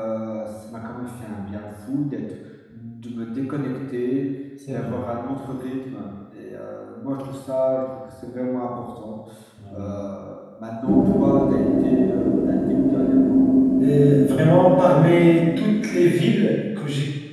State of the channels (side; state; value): both; identical; correlation 1.00